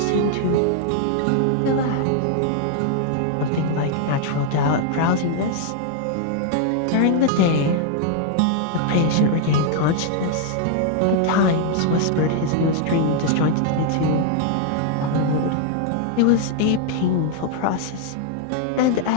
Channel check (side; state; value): both; different; correlation 0.00